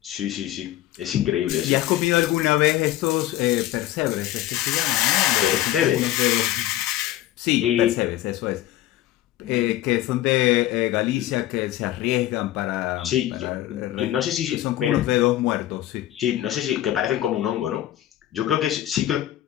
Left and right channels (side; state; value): right; quieter; 14.1 dB